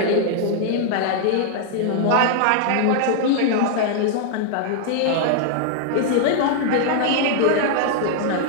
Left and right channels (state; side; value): different; both; correlation 0.00